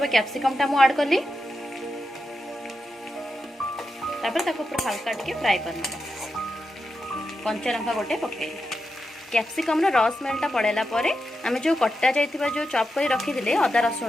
कैप्सिकमटा मु ऐड करली। तापर ताको पूरा हल्का टिके फ्राई करना। कंचा लंका गोटे पके कैप्सिकम रो रस स्मेलटा पड़ेला परे आमे जो कट्टा जायथिबा जो चॉप करी रखी दिले अदा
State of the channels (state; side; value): normal; both; correlation 0.88